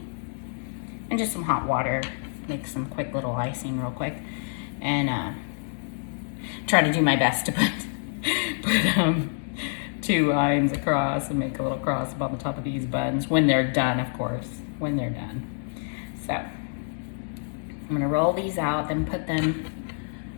and just some hot water. Make some quick little icing real quick. And try to do my best to put 2 lines across and make a little cross up on the top of these buns when they're done, of course, when they're done. So I'm gonna roll these out, then put them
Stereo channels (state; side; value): silent; right; digital silence